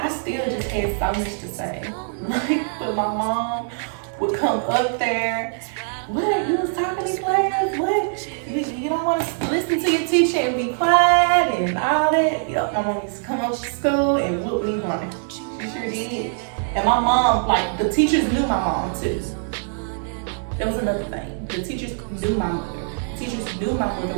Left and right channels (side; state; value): left; silent; digital silence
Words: still just had so much to say. Like, but my mom would come up there. What? You was talking in class? What? You don't want to listen to your teacher and be quiet and all that? Yep, my mom used to come up to school and whoop me running. She sure did. And my mom, like, the teachers knew my mom too. That was another thing. The teachers knew my mother. Teachers knew my mother